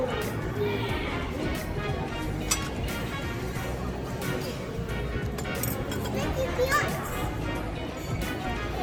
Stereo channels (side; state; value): both; identical; correlation 1.00